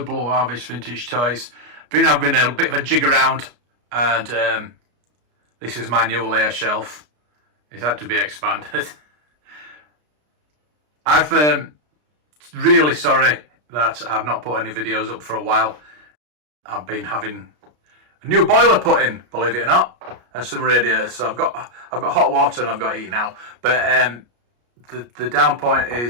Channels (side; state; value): left; late; 33 ms